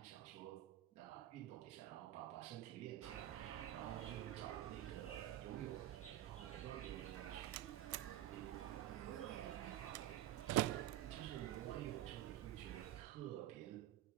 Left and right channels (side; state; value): left; quieter; 13.6 dB